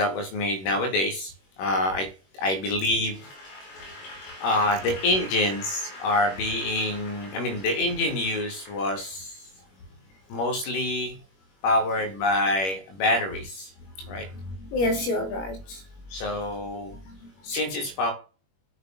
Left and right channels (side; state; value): right; late; 21 ms